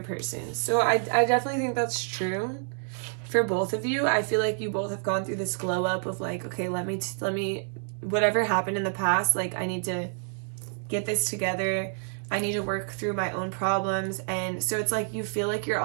person. So I definitely think that's true for both of you. I feel like you both have gone through this glow up of like, okay, let me, whatever happened in the past, like I need to get this together. I need to work through my own problems. And so it's like you feel like you're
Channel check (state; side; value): silent; left; 59 dB below the other